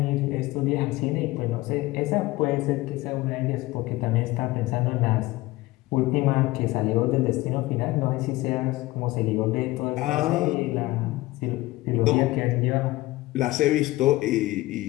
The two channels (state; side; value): quieter; right; 18.9 dB